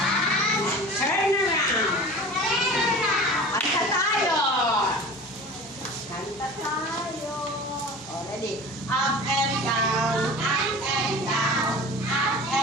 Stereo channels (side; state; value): both; normal; correlation 0.38